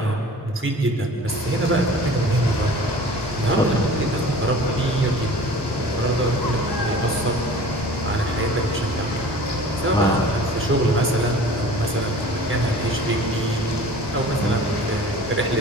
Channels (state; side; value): normal; both; correlation 0.43